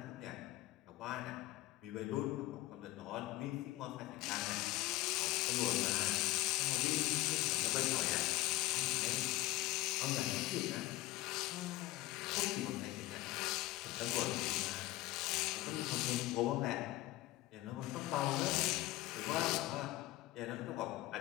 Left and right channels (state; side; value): quieter; right; 17.9 dB